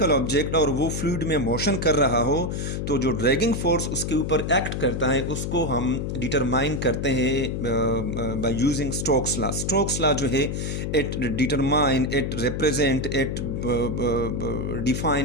object और वो फ्लूइड में मोशन कर रहा हो तो जो ड्रैगिंग फोर्स उसके ऊपर एक्ट करता है उसको हम डिटरमाइन करते हैं by using Stokes law. Stokes law जो है it determine, it represent, it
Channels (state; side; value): noise; left; hum, 3 dB below the sound